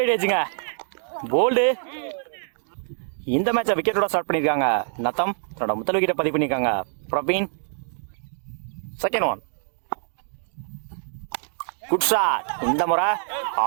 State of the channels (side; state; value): left; silent; digital silence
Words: edging. Bold. இந்த மேட்சை விக்கெட்டோட start பண்ணியிருக்காங்க நத்தம். தன்னோட முதல் விக்கெட்டை பதிவு பண்ணியிருக்காங்க Praveen. Second one. Good shot. இந்த முறை